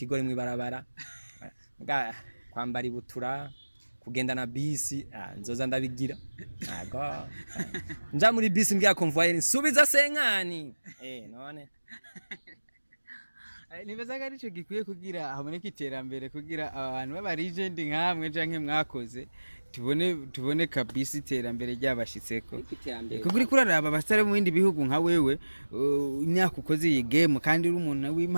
mwibarabara nga kwambara ibutura kugenda na bisi nzoza ndabigira ago nja muri bisi mbya convoyer nsubiza senkani none nibazaga arico gikwiye kugira haboneka iterambere kugira abantu baba legend nkamwe canke mwakoze tubone kabisa iterambere ryabashitseko iterambere kuko uri kuraraba abasare mu bindi bihugu nka wewe imyaka ukoze iyi game kandi uri umuntu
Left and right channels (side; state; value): both; inverted; correlation -1.00